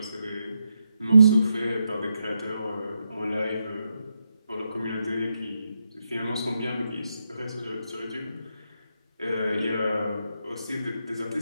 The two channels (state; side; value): inverted; both; correlation -0.83